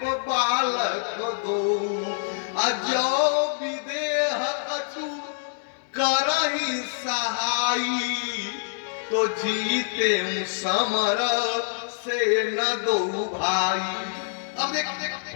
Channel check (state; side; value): silent; right; digital silence